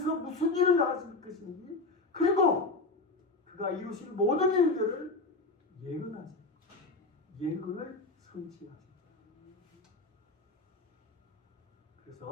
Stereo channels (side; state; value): right; quieter; 3.3 dB